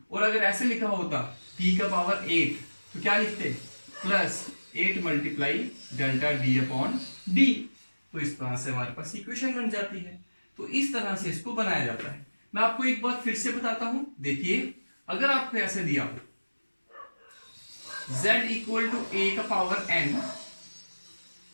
और अगर ऐसे लिखा होता p का पावर 8 तो क्या लिखते? Plus 8 multiply delta d upon d। तो इस तरह से हमारे पास इक्वेशन बन जाती है। तो इस तरह से इसको बनाया जाता है। मैं आपको एक बात फिर से बताता हूं। देखिए, अगर आपको ऐसे दिया हो z इक्वल टू a का पावर n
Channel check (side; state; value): both; inverted; correlation -1.00